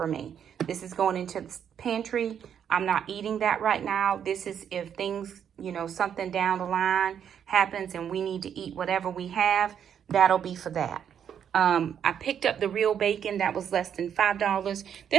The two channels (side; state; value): left; quieter; 8.6 dB